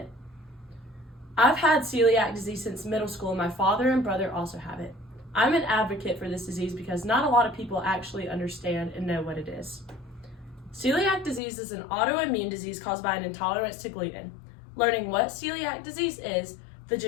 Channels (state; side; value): drops out; right; at 11.4 s